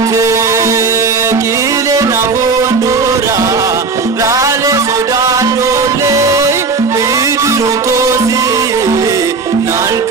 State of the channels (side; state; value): left; quieter; 4.4 dB